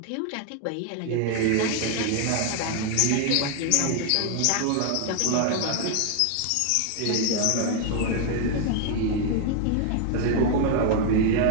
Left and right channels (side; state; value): both; different; correlation 0.00